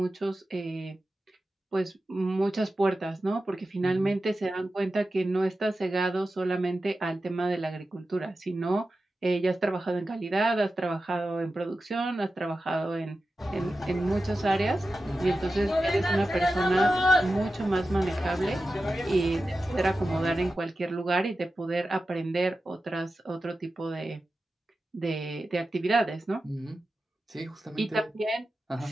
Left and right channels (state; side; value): normal; both; correlation 0.93